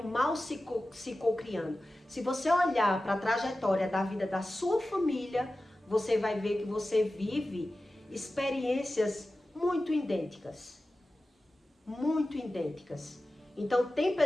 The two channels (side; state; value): both; normal; correlation 0.95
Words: mal se cocriando. Se você olhar para a trajetória da vida da sua família, você vai ver que você vive experiências muito idênticas. Muito idênticas. Então, tem